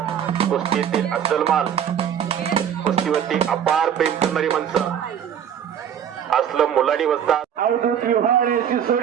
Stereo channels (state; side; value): quieter; left; 8.9 dB